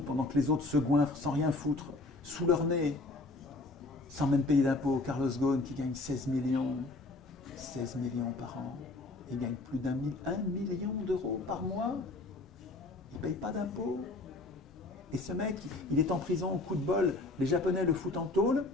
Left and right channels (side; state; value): right; quieter; 3.1 dB